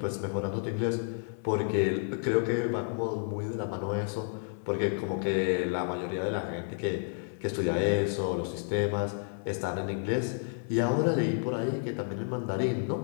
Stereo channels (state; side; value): silent; right; 57 dB below the other